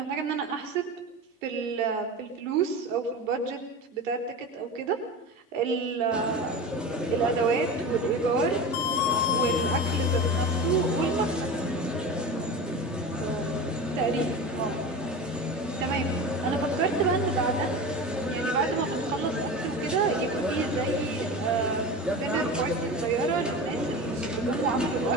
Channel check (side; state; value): both; normal; correlation 0.29